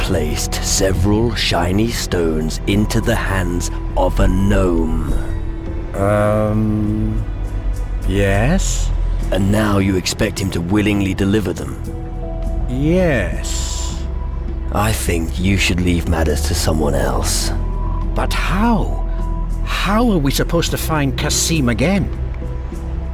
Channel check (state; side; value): identical; both; correlation 1.00